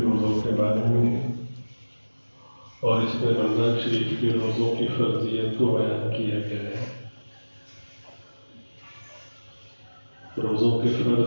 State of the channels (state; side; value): inverted; both; correlation -1.00